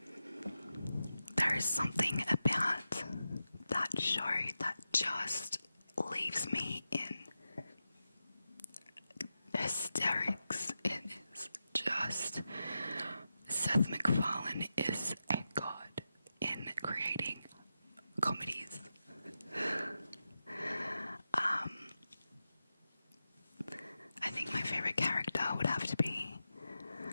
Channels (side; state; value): both; inverted; correlation -0.90